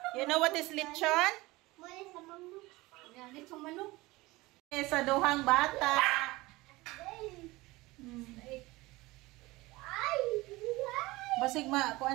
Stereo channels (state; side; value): quieter; left; 20.8 dB